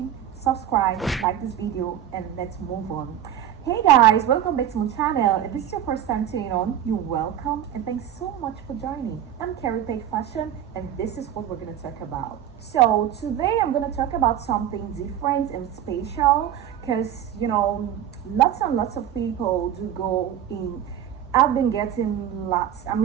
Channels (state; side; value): quieter; left; 10.4 dB